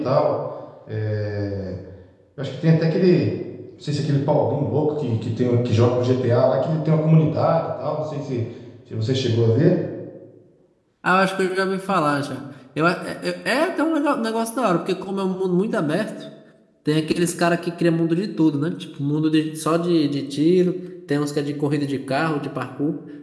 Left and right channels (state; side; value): identical; both; correlation 1.00